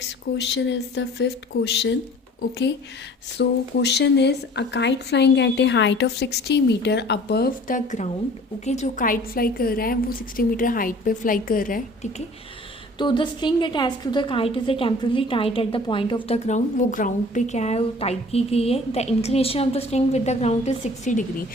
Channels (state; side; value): normal; both; correlation 0.48